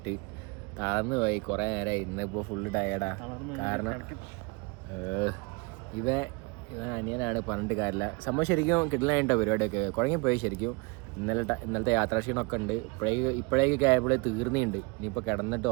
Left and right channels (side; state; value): left; quieter; 28.4 dB